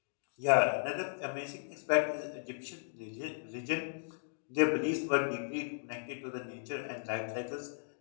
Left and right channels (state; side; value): silent; right; digital silence